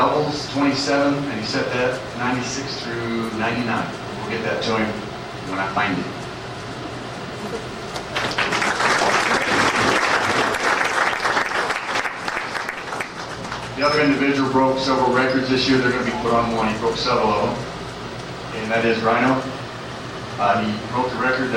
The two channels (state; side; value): identical; both; correlation 1.00